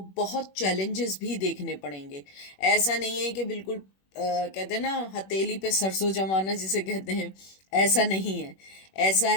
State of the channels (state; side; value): late; right; 21 ms